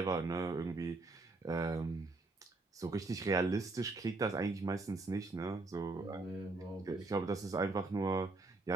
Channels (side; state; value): left; quieter; 3.3 dB